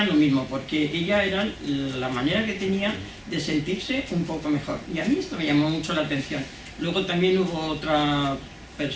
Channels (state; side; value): identical; both; correlation 1.00